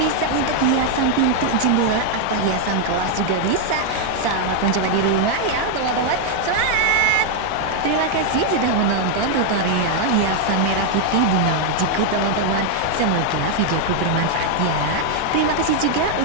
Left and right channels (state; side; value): different; both; correlation 0.00